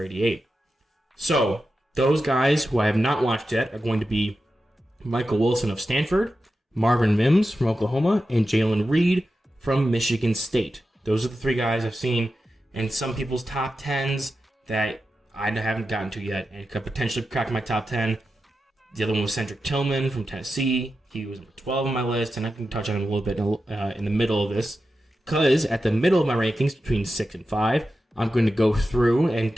So those guys who I have not watched yet are going to be Michael Wilson of Stanford, Marvin Mims from Oklahoma, and Jalen Reed from Michigan State. Those are the 3 guys I've seen in some people's top 10s that I haven't gotten to yet and could potentially crack my top 10. The other one was Cedric Tillman from Tennessee. He was number 12 on my list, and I can touch on him a little bit in the middle of this, because at the middle of my rankings, between 6 and 5, I'm going to go through and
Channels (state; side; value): normal; both; correlation 0.91